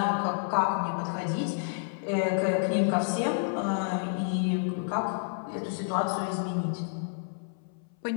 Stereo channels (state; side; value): silent; right; 58 dB below the other